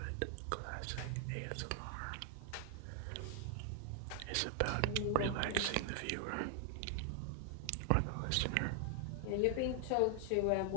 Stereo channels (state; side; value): different; both; correlation 0.00